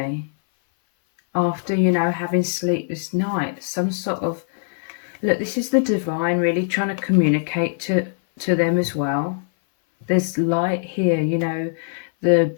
after, you know, having sleepless nights. Some sort of, look, this is the divine really trying to communicate to them as well. There's light here, you know, the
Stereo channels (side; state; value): right; silent; 59 dB below the other